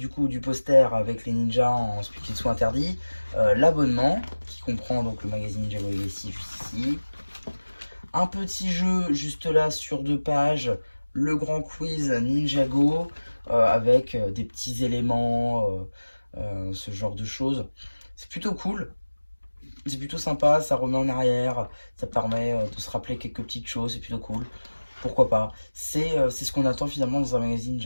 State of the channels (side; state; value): both; inverted; correlation -1.00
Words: coup du poster avec les ninjas en ce qu'ils soient interdits, l'abonnement qui comprend donc le magazine Ninjago Legacy juste ici, un petit jeu juste là sur 2 pages, le grand quiz Ninjago avec des petits éléments, ce genre de choses. C'est plutôt cool, c'est plutôt sympa, ça remet en arrière, ça permet de se rappeler quelques petites choses, c'est plutôt cool. Pourquoi pas. C'est ce qu'on attend finalement dans un magazine